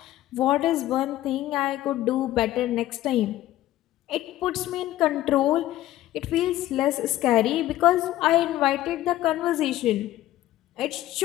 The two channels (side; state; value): right; quieter; 14.5 dB